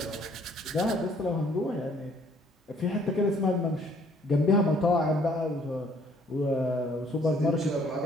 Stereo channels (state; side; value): normal; both; correlation 0.62